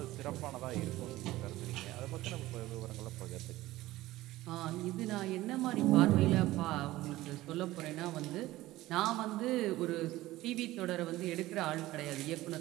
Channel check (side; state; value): left; quieter; 17.0 dB